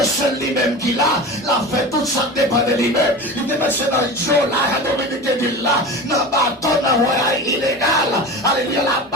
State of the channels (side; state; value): both; normal; correlation 0.31